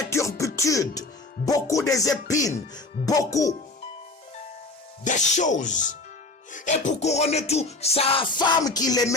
turpitudes, beaucoup des épines, beaucoup de choses. Et pour couronner tout, sa femme qu'il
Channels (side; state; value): right; quieter; 3.3 dB